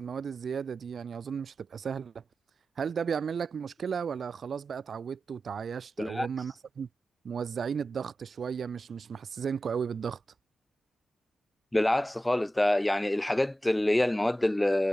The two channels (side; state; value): both; normal; correlation 0.93